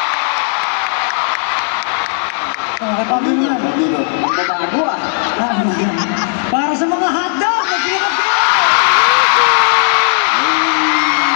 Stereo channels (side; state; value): right; silent; 55 dB below the other